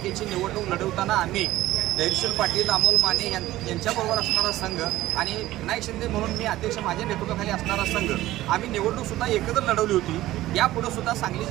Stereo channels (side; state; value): left; quieter; 15.8 dB